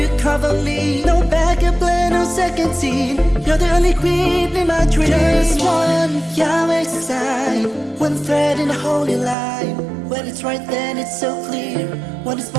you cover me. No backup plan, no second scene. You're the only queen in my dreams. Just one Yahweh sign, one thread in a holy line. When it's right, then it's so clear. When it's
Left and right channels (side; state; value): left; drops out; at 9.3 s